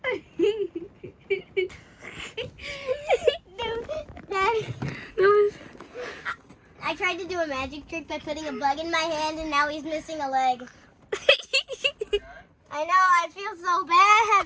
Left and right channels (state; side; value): identical; both; correlation 1.00